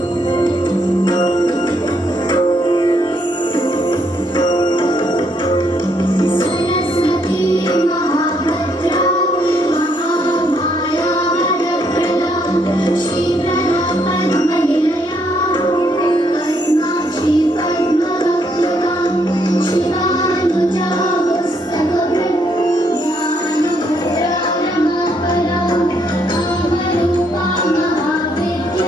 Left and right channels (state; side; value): normal; both; correlation 0.73